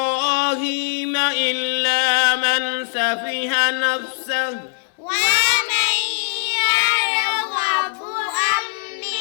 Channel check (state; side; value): silent; right; digital silence